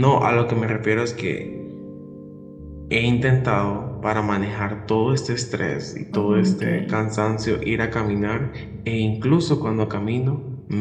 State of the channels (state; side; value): identical; both; correlation 1.00